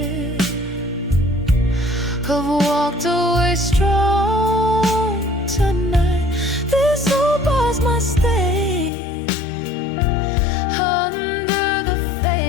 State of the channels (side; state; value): right; drops out; at 8.9 s